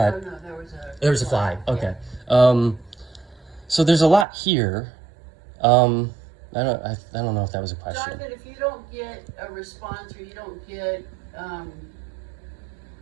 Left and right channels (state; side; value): drops out; left; at 4.2 s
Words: Oh, no, there was a flag. Okay. Yeah. So there's a lot here. I don't know if that was a question. Jonathan, if you don't get a response or you don't get,